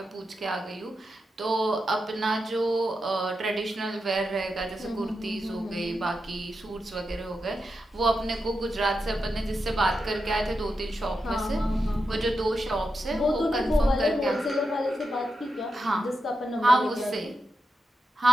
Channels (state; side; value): normal; both; correlation 0.88